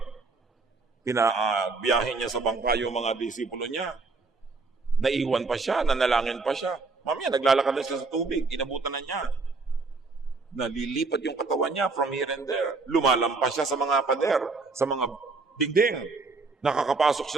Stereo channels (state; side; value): quieter; left; 3.9 dB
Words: pinabiyahin niya sa bangka yung mga disipulo niya. Naiwan pa siya, nanalangin pa siya. Mamaya, naglalakad na siya sa tubig, inabutan na niya. Nalilipat yung katawan niya from here and there. Lumalampas siya sa mga pader, sa mga dingding. Nakakapasok